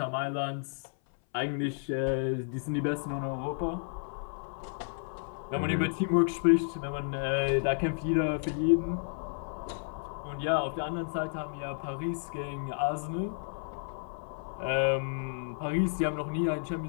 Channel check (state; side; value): silent; right; 57 dB below the other